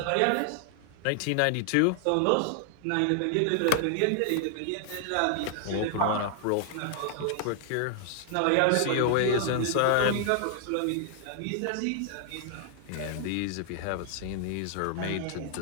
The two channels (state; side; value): different; both; correlation 0.00